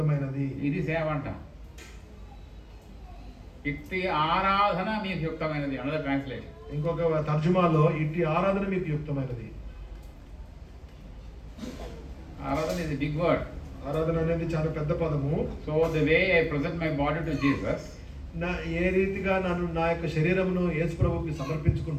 ఇది సేవ అంట. ఇట్టి ఆరాధన మీకు యుక్తమైనది. Another translation. ఇంకొక తర్జుమాలో ఇట్టి ఆరాధన మీకు యుక్తమైనది. ఆరాధన ఇస్ బిగ్ వర్డ్. ఆరాధన అనేది చాలా పెద్ద పదము. So the way I present my body to Jesus, ఏ రీతిగా నన్ను నా యొక్క శరీరమును యేసు ప్రభువుకి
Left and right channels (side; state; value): both; identical; correlation 1.00